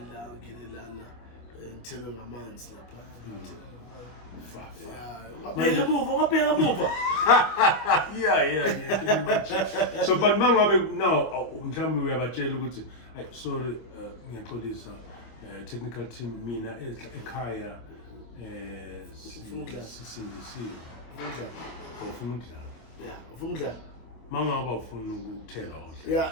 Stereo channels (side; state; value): right; late; 25 ms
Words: Lana, and tell them a man's yeah. So, but now, we have a jail. I sorry, this technical team, Mina, Ekaya, Sindisiyo. Yeah, Funga. Mangaba ufuna ukuthela Yeah,